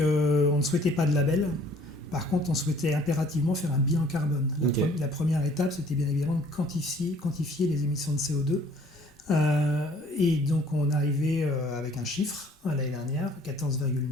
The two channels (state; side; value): normal; both; correlation 0.56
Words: ne souhaitait pas de label. Par contre, on souhaitait impérativement faire un bilan carbone. La première étape, c'était bien évidemment de quantifier les émissions de CO2. Et donc, on est arrivé avec un chiffre l'année dernière,